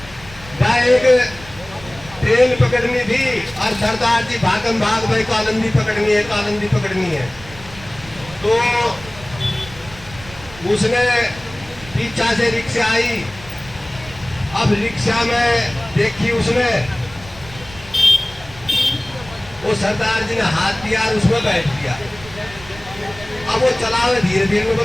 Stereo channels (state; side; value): noise; right; rumble, 18 dB below the sound